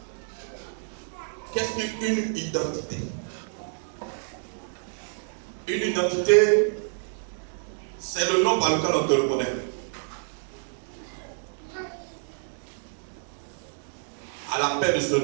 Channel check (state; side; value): silent; left; 59 dB below the other